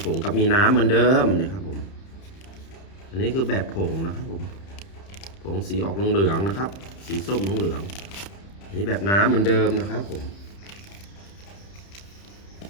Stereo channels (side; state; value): right; late; 30 ms